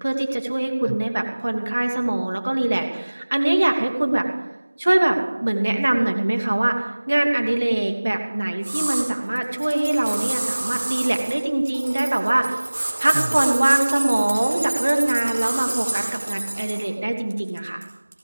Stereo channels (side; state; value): both; inverted; correlation -1.00